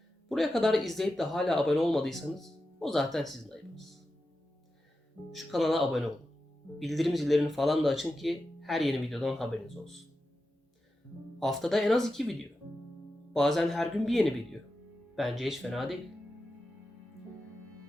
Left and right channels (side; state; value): both; normal; correlation 0.91